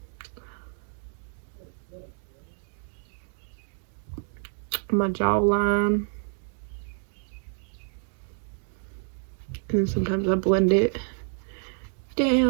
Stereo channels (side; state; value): left; silent; digital silence